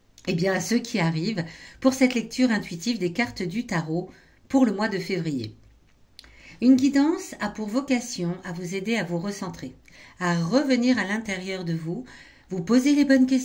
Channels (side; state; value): both; identical; correlation 1.00